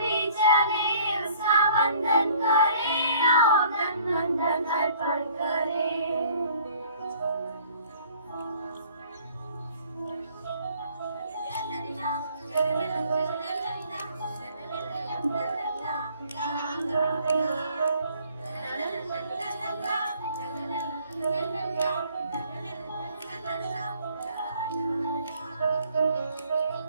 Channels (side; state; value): both; inverted; correlation -0.57